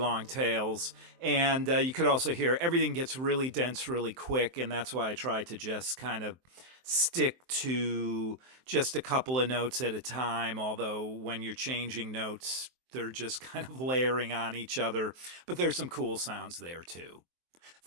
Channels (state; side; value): late; left; 23 ms